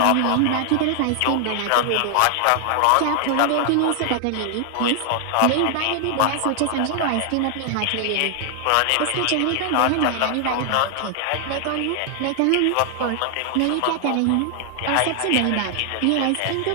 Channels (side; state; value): both; different; correlation 0.00